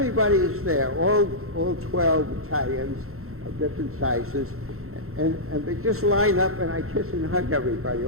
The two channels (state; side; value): late; left; 0.63 ms